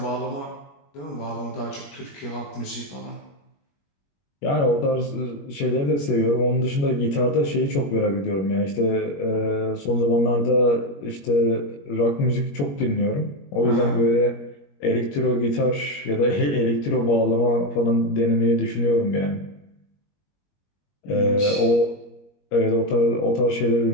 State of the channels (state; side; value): late; right; 21 ms